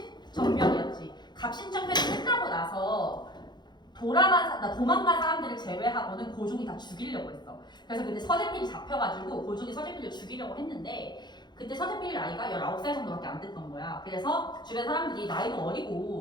갑신정변이 끝나고 나서 도망간 사람들을 제외하고는 고종이 다 죽이려고 했어. 그래서 그때 서재필이 잡혀가지고 고종이 서재필을 죽이려고 했는데, 그때 서재필 나이가 19살 정도밖에 안 됐던 거야. 그래서 주변 사람들이 나이도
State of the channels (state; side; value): late; right; 0.21 ms